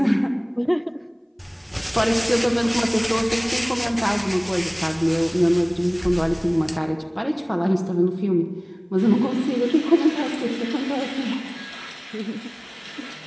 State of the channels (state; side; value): identical; both; correlation 1.00